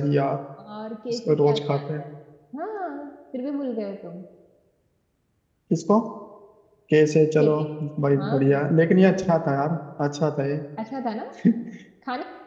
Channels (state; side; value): identical; both; correlation 1.00